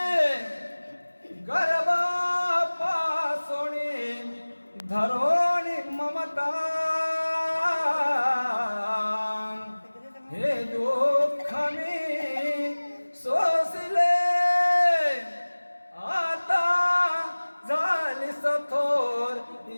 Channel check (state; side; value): inverted; both; correlation -1.00